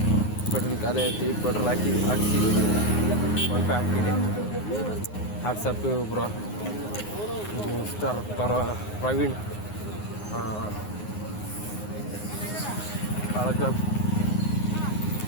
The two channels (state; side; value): late; right; 9.6 ms